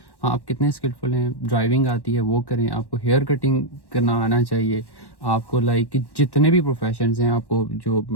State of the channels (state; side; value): late; right; 1.1 ms